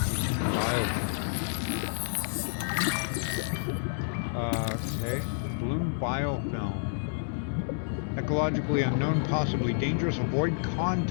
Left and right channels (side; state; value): right; silent; digital silence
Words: Okay. Bloom biofilm. Ecologically unknown, possibly dangerous. Avoid